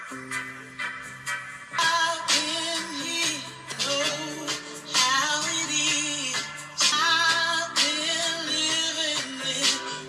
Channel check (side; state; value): both; identical; correlation 1.00